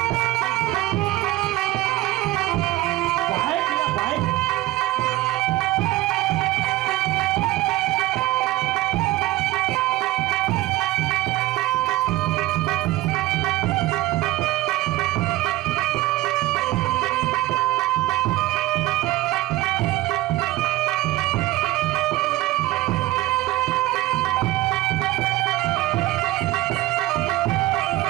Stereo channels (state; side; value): quieter; left; 17.5 dB